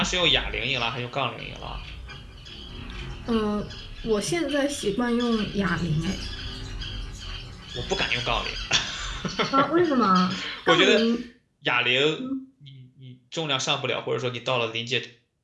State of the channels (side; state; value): both; identical; correlation 1.00